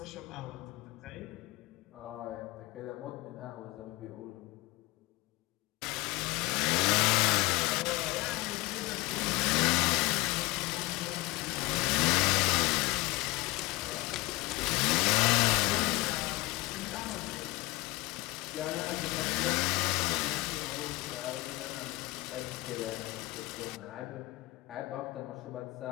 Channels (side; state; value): right; quieter; 22.0 dB